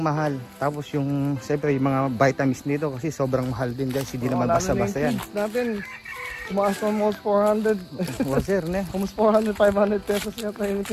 mahal. Tapos yung, siyempre, yung mga vitamins nito kasi sobrang mahal din guys. Hindi naman basta-basta yan. Natin, tumaas na almost 400. Well, sir, ne? Almost 400, 500 pesos yata yung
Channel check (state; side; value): identical; both; correlation 1.00